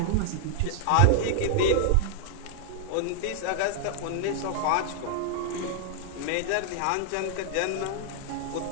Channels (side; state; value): both; different; correlation -0.01